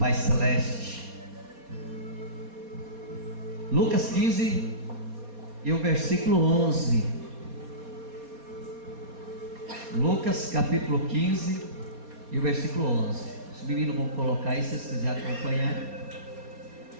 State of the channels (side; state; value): left; late; 4.2 ms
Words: Celeste. Lucas 15 e o versículo 11. Lucas capítulo 15 e o versículo 11. Os meninos vão colocar aí, se vocês quiserem acompanhar.